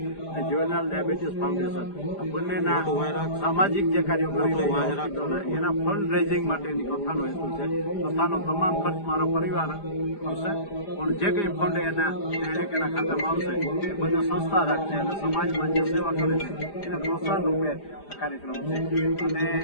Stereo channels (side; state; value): right; late; 4.9 ms